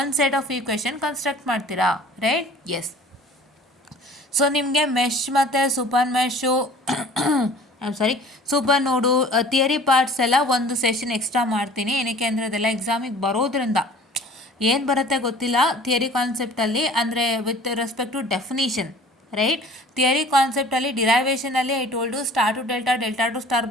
ಸೆಟ್ ಆಫ್ ಈಕ್ವೇಷನ್ ಕನ್ಸ್ಟ್ರಕ್ಟ್ ಮಾಡ್ತೀರಾ, ರೈಟ್? ಎಸ್. ಸೊ ನಿಮಗೆ ಮೆಶ್ ಮತ್ತು ಸೂಪರ್ ಮೆಶು ಸೂಪರ್ ನೋಡು ಥಿಯರಿ ಪಾರ್ಟ್ಸ್ ಎಲ್ಲ ಒಂದು ಸೆಷನ್ ಎಕ್ಸ್ಟ್ರಾ ಮಾಡ್ತೀನಿ. ಏನಕ್ಕೆ ಅಂದರೆ ಅದೆಲ್ಲ ಎಕ್ಸಾಮಿಗೆ ಬರೋದ್ರಿಂದ ಏನು ಬರುತ್ತೆ ಗೊತ್ತಿಲ್ಲ ಥಿಯರಿ ಕಾನ್ಸೆಪ್ಟಲ್ಲಿ, ಅಂದರೆ with respect to definition, right. Theory ಕಾನ್ಸೆಪ್ಟಲ್ಲಿ ಡಿರೈವೇಷನಲ್ಲಿ I told star to delta, delta to star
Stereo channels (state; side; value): normal; both; correlation 0.47